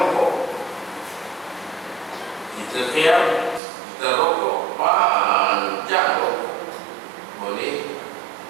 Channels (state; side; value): drops out; left; at 3.6 s